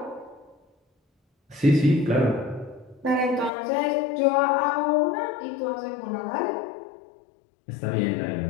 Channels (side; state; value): right; drops out; at 3.5 s